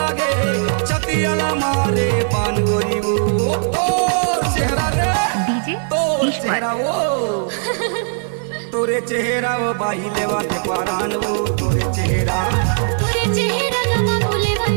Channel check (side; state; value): left; silent; digital silence